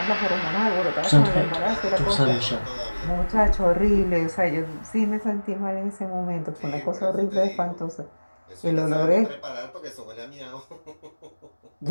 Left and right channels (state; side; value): inverted; both; correlation -1.00